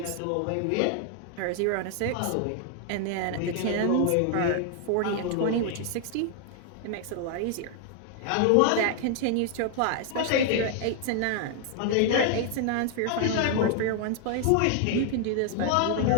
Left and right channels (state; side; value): different; both; correlation 0.00